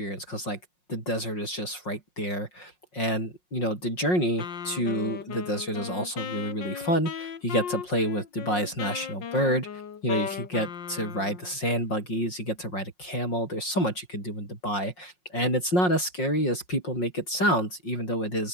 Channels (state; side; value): late; right; 5.5 ms